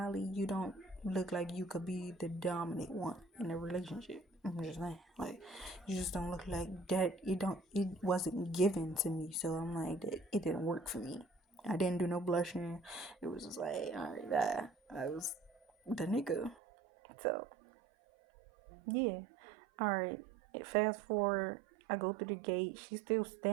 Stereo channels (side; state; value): left; drops out; at 16.6 s